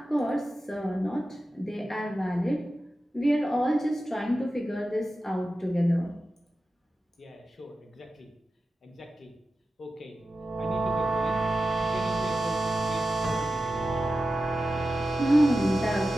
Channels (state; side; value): normal; both; correlation 0.93